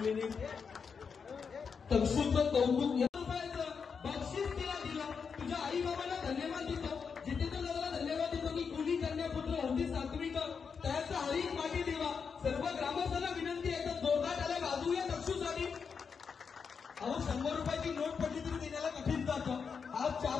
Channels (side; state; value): right; quieter; 5.9 dB